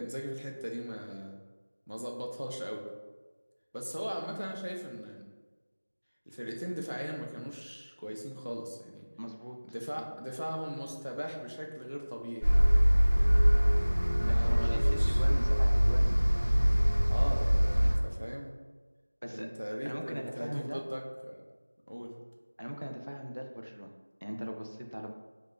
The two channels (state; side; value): inverted; both; correlation -1.00